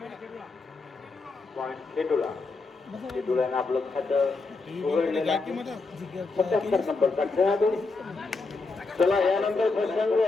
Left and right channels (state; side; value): quieter; right; 3.8 dB